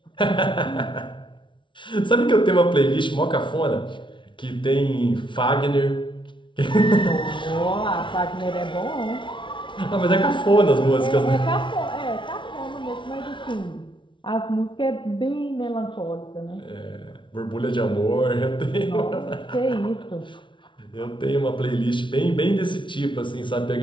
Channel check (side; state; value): right; late; 0.24 ms